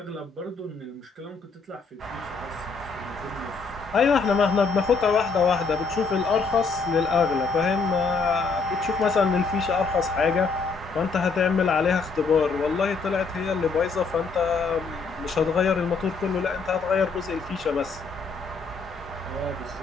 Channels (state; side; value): quieter; right; 4.6 dB